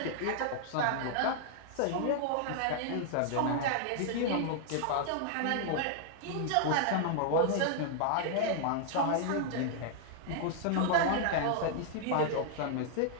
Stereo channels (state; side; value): different; both; correlation -0.01